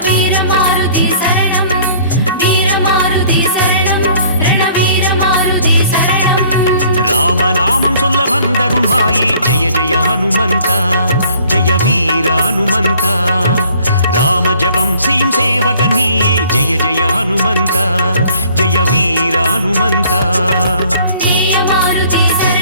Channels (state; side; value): inverted; both; correlation -0.56